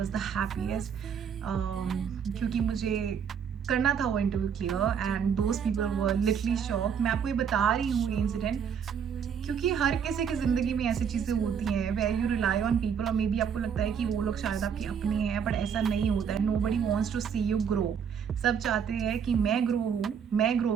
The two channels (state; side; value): quieter; left; 7.4 dB